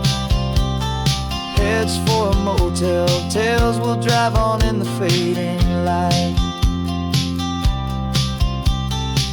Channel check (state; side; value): identical; both; correlation 1.00